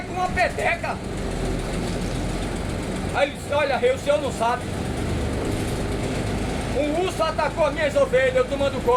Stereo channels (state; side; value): identical; both; correlation 1.00